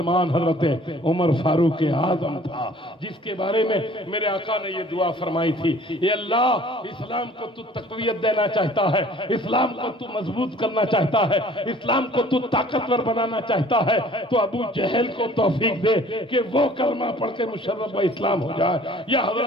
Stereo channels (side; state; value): both; normal; correlation 0.52